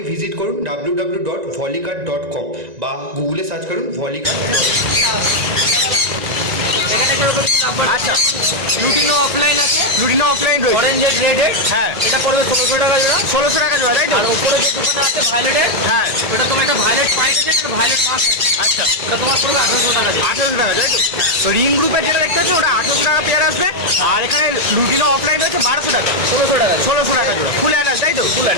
ভিজিট করুন www.volicart.com বা গুগলে সার্চ করুন volicart.com। এখানে যেরকম আচ্ছা, লুটিনো অফলাইন আছে, লুটিনো অফলাইন রয়েছে। অরেঞ্জেড রেডেড। হ্যাঁ, এটা পড়বে 1600 টাকা জোড়া। 1600 টাকা জোড়া, তাই তো? আর উপরে যে দোকানে আছে ভায়োলেটের, হ্যাঁ, ওটা তোমার একটা ভায়োলেট পাইট আছে, একটা ভায়োলেট পাঁচ আছে। আচ্ছা, ওটা তোমার পড়বে 1800 টাকা জোড়া। 1800 টাকা, তাই তো? তো রিং গ্রুপের যেটা দেখতে পাচ্ছেন ওটা 1800 টাকা পেয়ার আসবে। আর এখানে লুটিনো অফলাইন রয়েছে 1200 টাকা। 1600 টাকা। 1600 টাকা জোড়া। ফুল অ্যাডাল্ট, তাই তো? Full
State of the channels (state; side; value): late; left; 1.8 ms